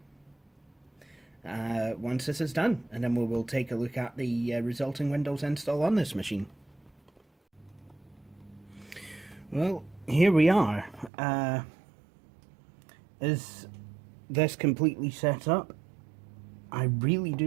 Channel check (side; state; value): left; drops out; at 11.1 s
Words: once this is done, and then we will take a look at the resulting Windows install on this machine. Well, here we are. Is this completely set up? I really